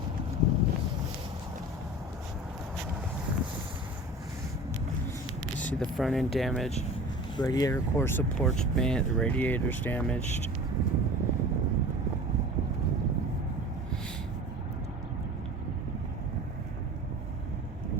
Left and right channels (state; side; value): normal; both; correlation 0.39